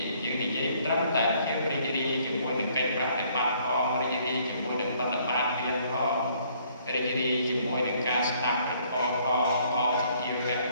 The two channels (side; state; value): both; inverted; correlation -0.64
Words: យើងនិយាយត្រឹមតែភាពរីករាយជាមួយនឹងកិច្ចប្រតិបត្តិផងរីករាយជាមួយនឹងបទបានមានផងរីករាយជាមួយនឹងការស្ដាប់ព្រះធម៌ផងអសភាវៈ